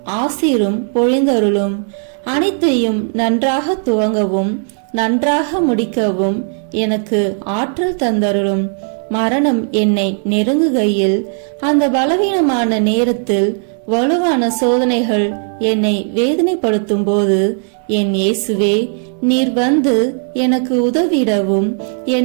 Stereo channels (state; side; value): silent; left; 57 dB below the other